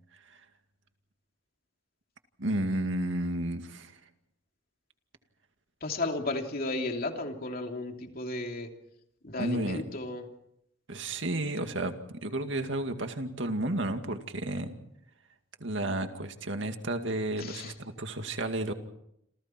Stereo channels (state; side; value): normal; both; correlation 0.35